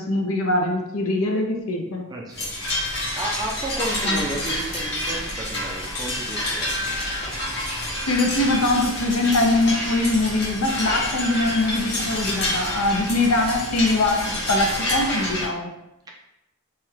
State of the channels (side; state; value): both; normal; correlation 0.24